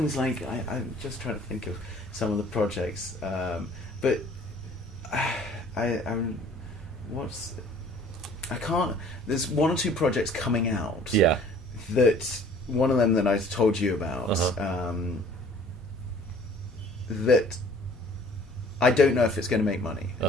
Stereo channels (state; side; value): normal; both; correlation 0.53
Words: like I'm just trying to think of some of the projects, but I'm what's I can't. There's one or two projects coming out. Yeah. That one of them that I told you about. Uh-huh. That I don't know if it's going to make money.